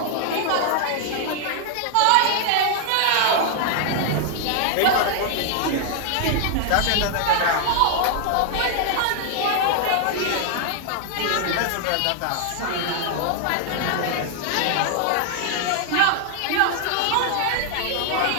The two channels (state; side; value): different; both; correlation 0.00